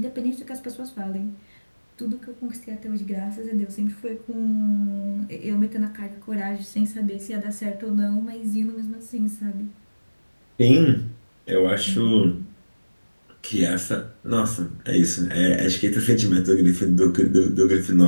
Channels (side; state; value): both; inverted; correlation -1.00